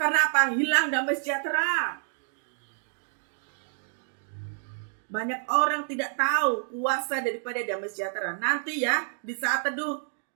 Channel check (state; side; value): silent; left; digital silence